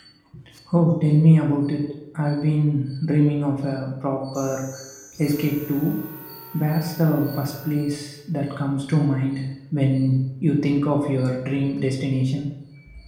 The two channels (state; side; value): identical; both; correlation 1.00